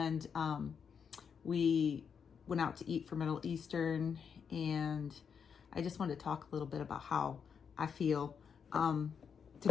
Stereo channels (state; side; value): quieter; right; 6.7 dB